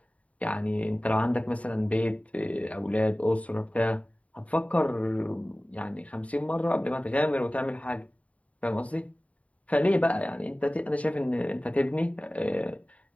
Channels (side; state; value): right; late; 0.067 ms